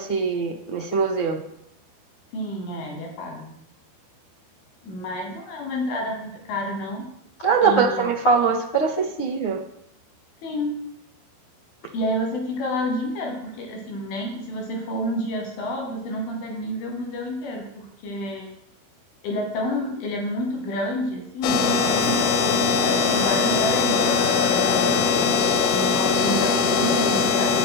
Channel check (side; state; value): right; late; 12 ms